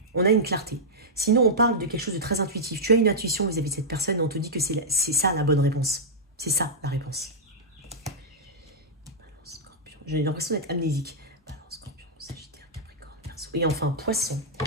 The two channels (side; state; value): both; normal; correlation -0.09